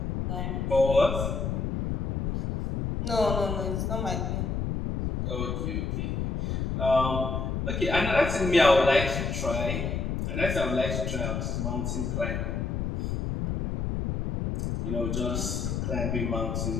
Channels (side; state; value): left; noise; rumble, 1 dB below the sound